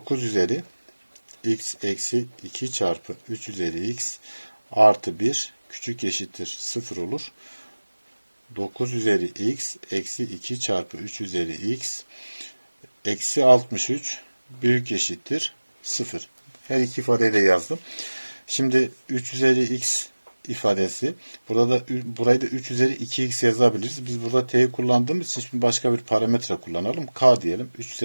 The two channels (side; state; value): both; inverted; correlation -1.00